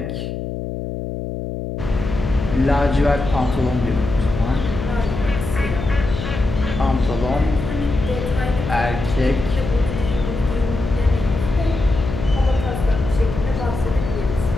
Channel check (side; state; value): left; noise; hum, 6 dB below the sound